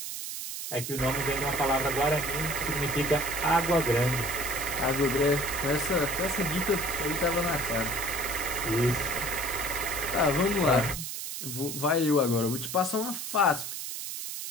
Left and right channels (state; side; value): noise; right; hiss, 6 dB below the sound